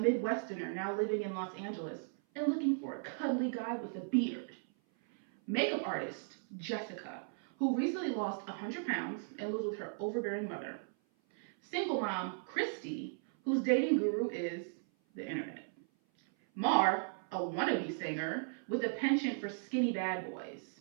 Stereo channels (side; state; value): left; silent; 53 dB below the other